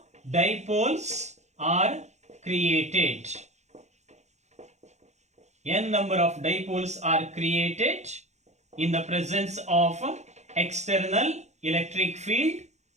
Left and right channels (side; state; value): left; late; 0.33 ms